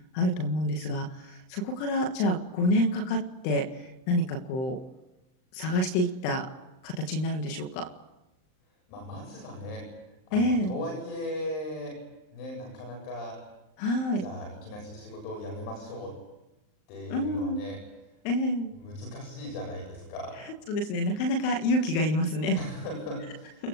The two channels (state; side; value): late; right; 39 ms